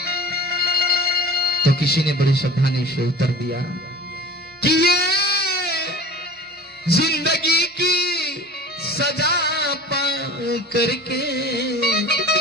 तो किसी ने बड़ी सावधानी से उत्तर दिया कि ये जिंदगी की सजा पा करके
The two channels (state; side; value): normal; both; correlation 0.39